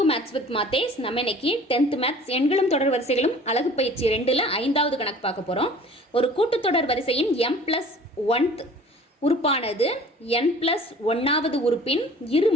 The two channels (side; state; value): both; normal; correlation 0.47